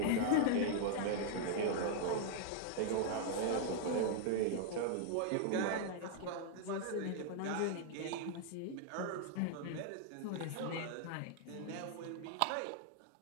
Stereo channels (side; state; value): both; different; correlation 0.00